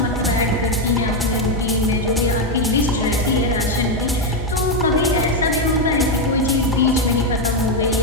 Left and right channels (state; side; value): normal; both; correlation 0.05